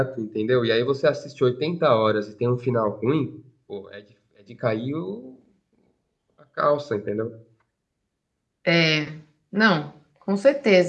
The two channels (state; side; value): identical; both; correlation 1.00